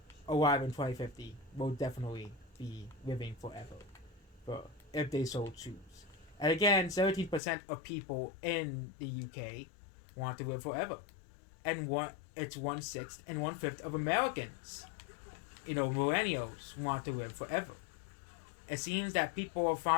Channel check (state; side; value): drops out; right; at 7.4 s